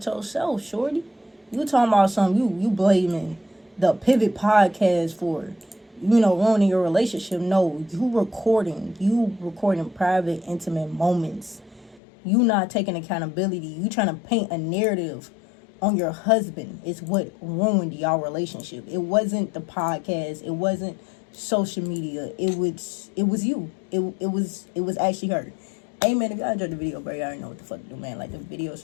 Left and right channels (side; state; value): right; drops out; at 12.0 s